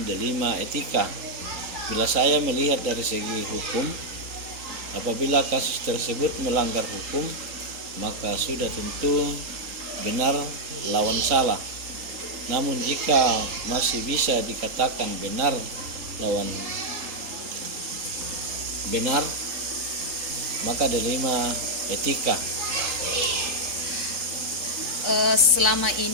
dilema etika. Bila saya melihat dari segi hukum, apabila kasus tersebut melanggar hukum, maka sudah tentu benar lawan salah. Namun jika masih bisa dikatakan benar lawan benar, maka dilema etika. Selama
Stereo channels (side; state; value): left; late; 3.8 ms